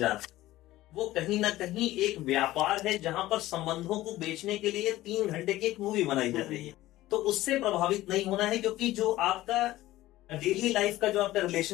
रहा है वो कहीं ना कहीं एक व्यापार है, जहां पर संबंधों को बेचने के लिए 3 घंटे की एक मूवी बनाई जा रही है। तो उससे प्रभावित नहीं होना है, क्योंकि जो आपका डेली लाइफ का जो आपका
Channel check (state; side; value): quieter; right; 16.2 dB